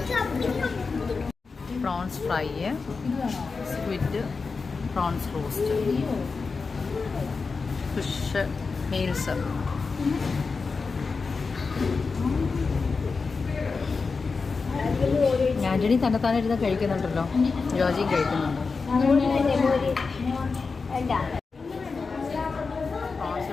Prawns fry, squid, prawns roast, fish meals. Antony തന്നെത്താനിരുന്ന് കഴിക്കുന്നുണ്ടല്ലോ. ജോജിയും കഴിക്കുന്നുണ്ട്. പ്രോൺസ്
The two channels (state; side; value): quieter; right; 4.6 dB